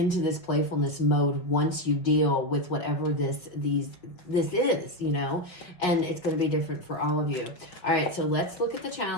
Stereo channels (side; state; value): right; late; 5.5 ms